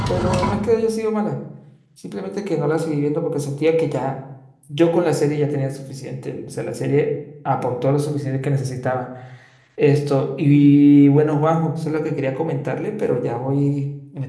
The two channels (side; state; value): both; identical; correlation 1.00